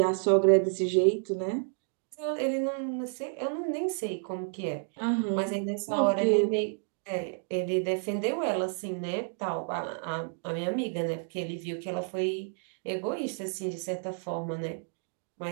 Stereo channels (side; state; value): left; silent; 58 dB below the other